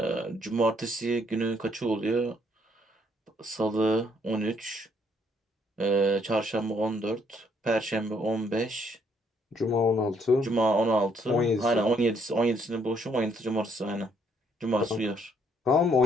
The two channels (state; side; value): normal; both; correlation 0.69